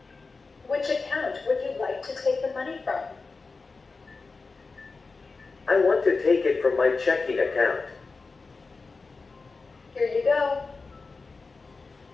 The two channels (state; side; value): quieter; right; 4.1 dB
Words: Which account would you like to take the money from? I want to take it from my checking account. Here you go.